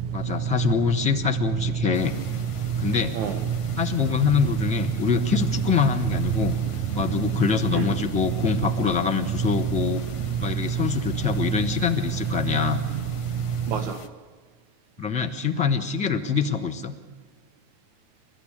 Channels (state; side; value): late; left; 9.3 ms